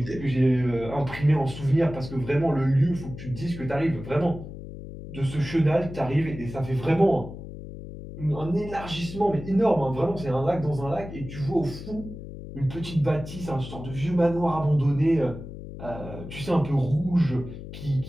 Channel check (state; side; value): noise; left; hum, 11 dB below the sound